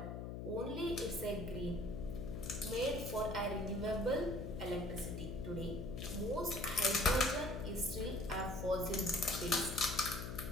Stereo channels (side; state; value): left; noise; hum, 6 dB below the sound